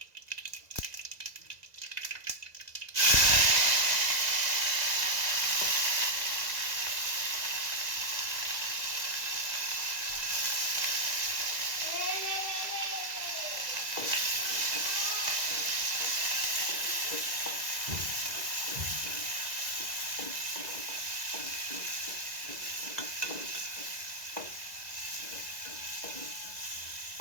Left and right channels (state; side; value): late; left; 2.0 ms